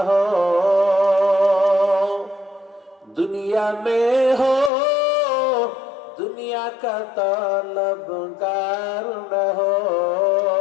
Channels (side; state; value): right; drops out; at 4.7 s